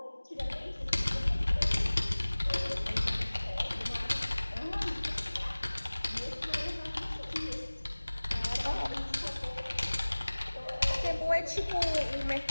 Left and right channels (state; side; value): inverted; both; correlation -1.00